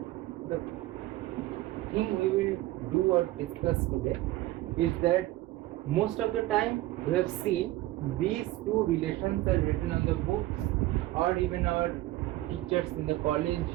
the thing we will do or discuss today is that most of the time we have seen these two relations are written on the books, or even our teachers in the college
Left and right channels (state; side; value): quieter; left; 16.8 dB